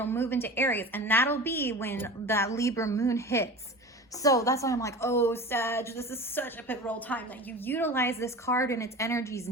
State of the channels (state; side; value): normal; both; correlation 0.34